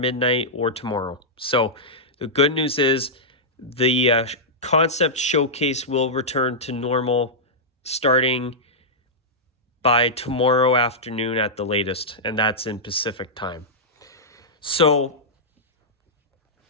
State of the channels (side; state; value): both; normal; correlation -0.10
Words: or tomorrow. So the good news is the concept showcase will return to normal starting by tomorrow afternoon at the latest, and that's in Pacific time. So